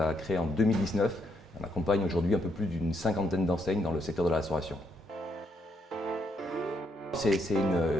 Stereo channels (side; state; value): both; normal; correlation 0.76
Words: créée en 2019. On accompagne aujourd'hui un peu plus d'une cinquantaine d'enseignes dans le secteur de la restauration. C'est